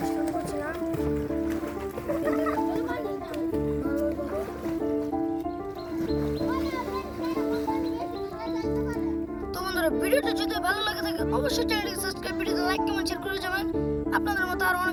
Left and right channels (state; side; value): identical; both; correlation 1.00